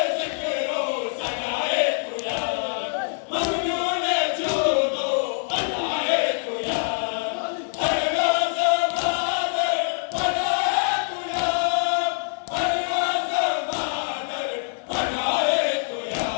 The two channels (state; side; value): silent; right; 62 dB below the other